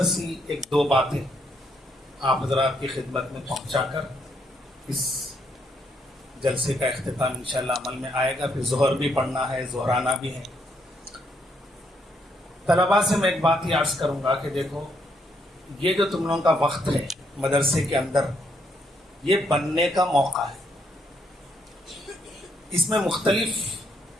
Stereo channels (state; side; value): normal; both; correlation 0.74